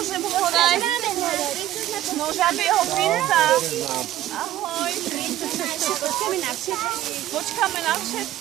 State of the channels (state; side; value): quieter; left; 13.6 dB